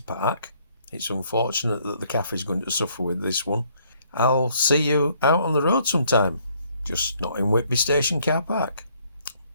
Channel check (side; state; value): both; inverted; correlation -0.66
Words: park. It's unfortunate that the cafe is going to suffer with this one. I'll see you out on the road sometime, just not in Whitby Station car park.